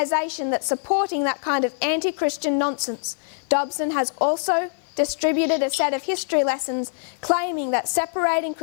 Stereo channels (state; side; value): silent; right; 57 dB below the other